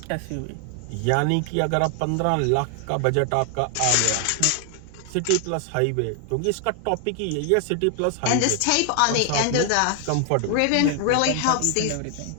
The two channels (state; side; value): different; both; correlation 0.00